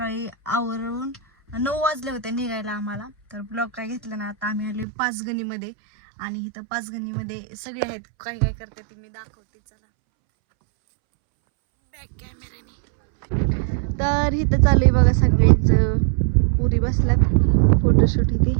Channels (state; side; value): drops out; left; at 4.9 s